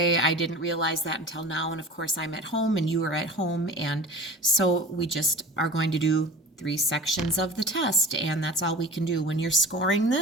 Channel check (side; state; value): both; normal; correlation 0.38